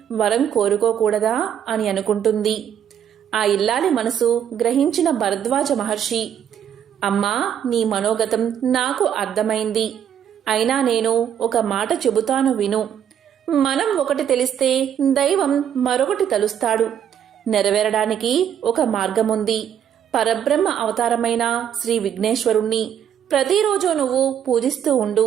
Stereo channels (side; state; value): left; quieter; 9.2 dB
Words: వరం కోరుకోకూడదా అని అనుకుంటుంది. ఆ ఇల్లాలి మనసు గ్రహించిన భరద్వాజ మహర్షి అమ్మా, నీ మనోగతం నాకు అర్థమైంది. అయినా నేను ఒక మాట చెబుతాను విను. మనం ఒకటి తెలిస్తే దైవం మరొకటి తలుస్తాడు. నెరవేరడానికి ఒక మార్గముంది. పరబ్రహ్మ అవతారమైన శ్రీ విఘ్నేశ్వరుణ్ణి ప్రతిరోజు నువ్వు పూజిస్తూ